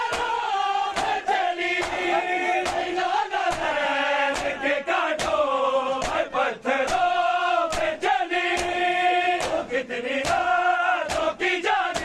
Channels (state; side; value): identical; both; correlation 1.00